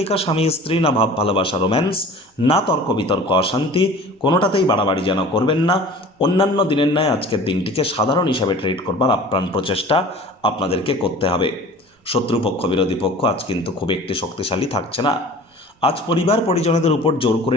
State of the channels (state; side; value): normal; both; correlation 0.43